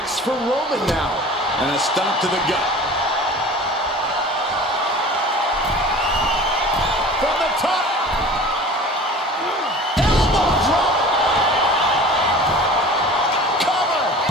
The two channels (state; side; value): normal; both; correlation 0.41